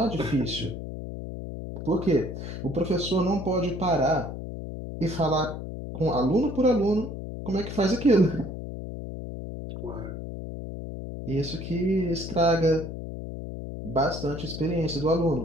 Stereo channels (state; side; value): noise; left; hum, 8 dB below the sound